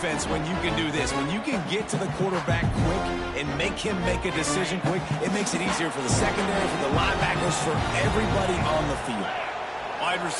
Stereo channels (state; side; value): identical; both; correlation 1.00